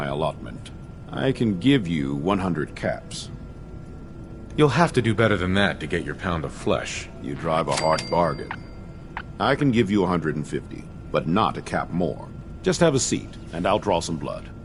allotment. I can give you 100 caps. You'll have to do better than that to get your pound of flesh. You drive a hard bargain. I can give you 150, but not a cap more. Just have a seat, and I'll draw some blood.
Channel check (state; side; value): identical; both; correlation 1.00